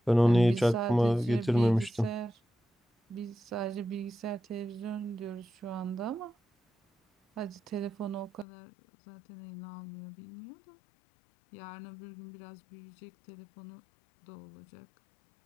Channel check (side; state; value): right; drops out; at 8.5 s